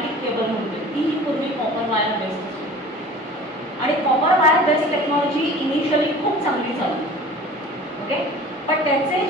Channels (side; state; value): both; normal; correlation 0.42